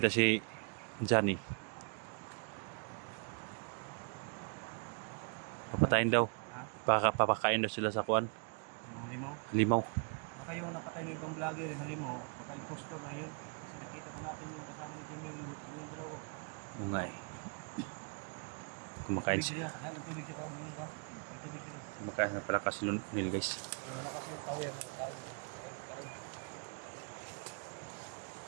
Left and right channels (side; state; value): left; quieter; 38.5 dB